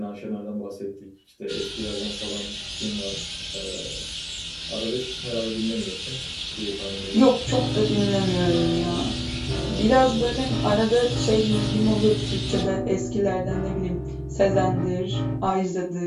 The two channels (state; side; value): identical; both; correlation 1.00